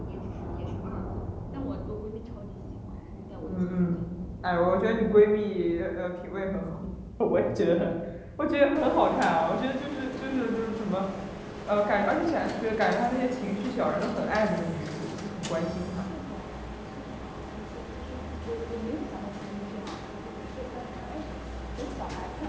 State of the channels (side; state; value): both; identical; correlation 1.00